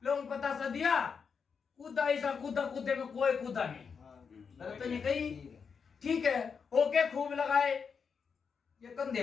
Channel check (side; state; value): right; quieter; 6.0 dB